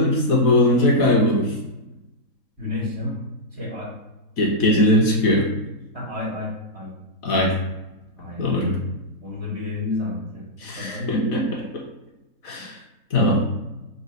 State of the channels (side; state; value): right; late; 4.1 ms